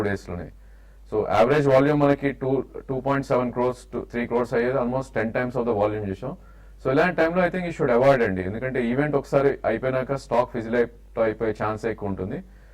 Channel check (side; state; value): both; identical; correlation 1.00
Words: days లోనే. సో యావరేజ్ వాల్యూమ్ మనకి 2.7 crores to 3 crores అయ్యేది, almost 10 times of the volume చూసాం. సో ఇలాంటి టైంలో ఐ థింక్ ఈ షుడ్ అవాయిడ్ అండి, ఎందుకంటే ఈవెంట్ ఒకసారి అయిపోయినాక స్టాక్ ఫిజిల్ అయిపోయే ఛాన్స్ ఎక్కువ ఉంటుంది.